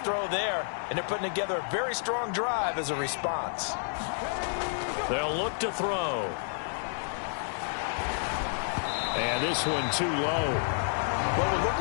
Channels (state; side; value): silent; right; digital silence